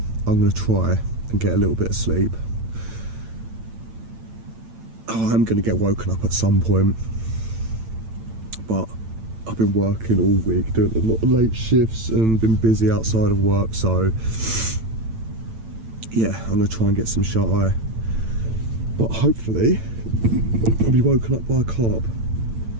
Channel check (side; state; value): left; late; 8.9 ms